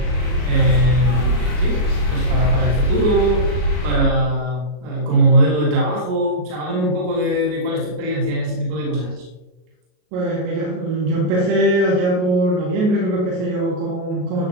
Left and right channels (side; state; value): left; late; 33 ms